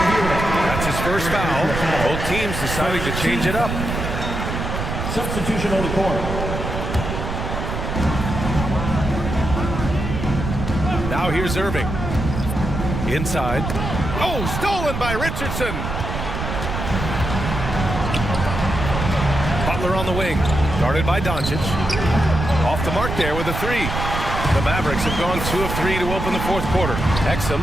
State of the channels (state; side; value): noise; right; rumble, 4 dB below the sound